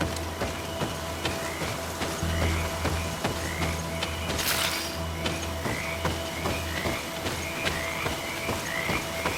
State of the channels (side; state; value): both; identical; correlation 1.00